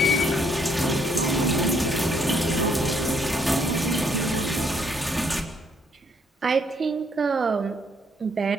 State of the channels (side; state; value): both; normal; correlation 0.69